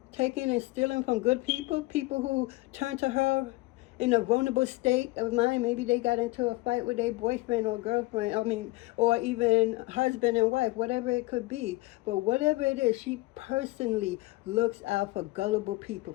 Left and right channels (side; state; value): right; quieter; 21.1 dB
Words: taking and stealing from good people who turn to her in a vulnerable state of mind. Maybe they got into a fight with their boyfriend or girlfriend, or even husband and wife, whatever it could be. But whatever it is, she personally looks out for gullible people,